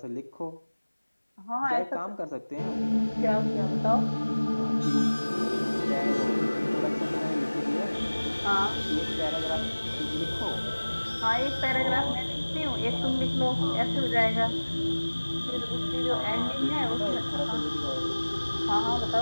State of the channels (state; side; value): inverted; both; correlation -1.00